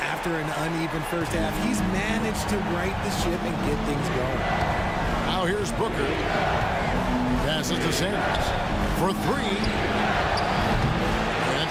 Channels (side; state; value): both; identical; correlation 1.00